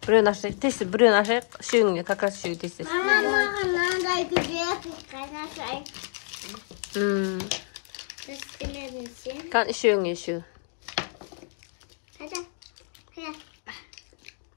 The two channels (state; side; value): silent; right; 60 dB below the other